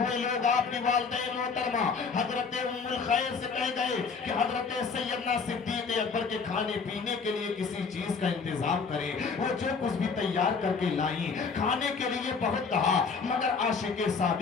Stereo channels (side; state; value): right; quieter; 5.2 dB